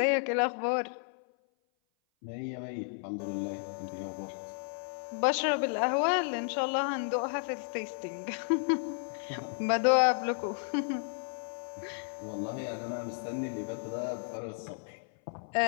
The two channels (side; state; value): right; silent; 56 dB below the other